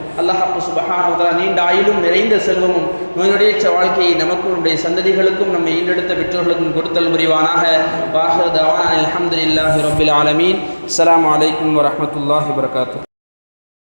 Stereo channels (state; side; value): inverted; both; correlation -1.00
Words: அல்லாஹ் சுப்ஹானஹு வ தஆலா நீண்ட ஆயுளும் நிறைந்த செல்வமும் நோயுடையற்ற வாழ்க்கையை நமக்கும் நம்முடைய சந்ததிகளுக்கும் நம்மை ஈண்டெடுத்த பெற்றோர்களுக்கும் கொடுத்தல் புரிவானாக. வாஹிரு தஅவானா அல்ஹம்துலில்லாஹி ரப்பில் ஆலமீன். அஸ்ஸலாமு அலைக்கும் வரஹ்மத்துல்லாஹி வபரகாத்துஹு.